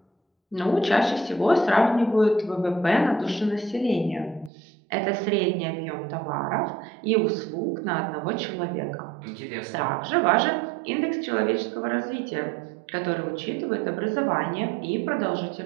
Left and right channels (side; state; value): left; drops out; at 4.5 s